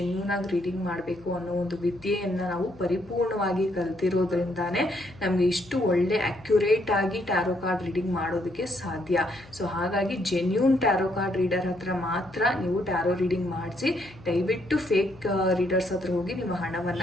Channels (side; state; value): left; noise; hum, 22 dB below the sound